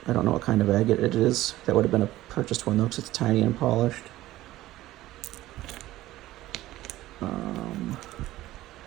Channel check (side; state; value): left; quieter; 15.9 dB